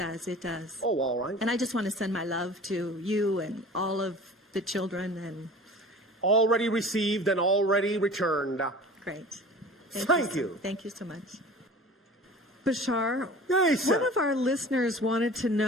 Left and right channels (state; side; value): normal; both; correlation 0.41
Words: It does. Oh, all right. And I just want to send my love to you and all of the children. And Already received and already returned. great. Thank you. Thank you so much. Bashar, Yes, one sir. of our listeners wanted to